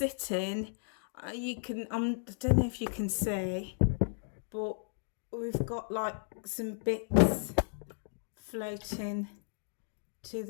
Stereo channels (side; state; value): right; silent; digital silence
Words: you can I don't know if you can see, but we've got like some bits floating to